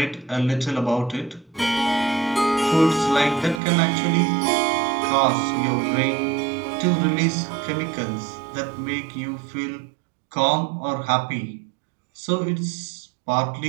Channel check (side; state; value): left; drops out; at 3.6 s